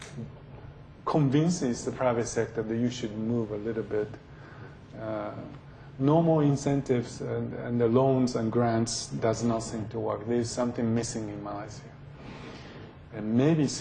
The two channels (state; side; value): identical; both; correlation 1.00